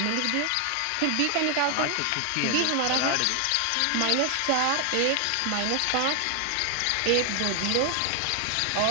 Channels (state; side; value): different; both; correlation 0.00